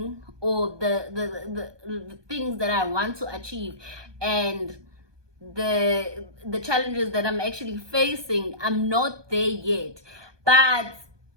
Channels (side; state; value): left; late; 1.2 ms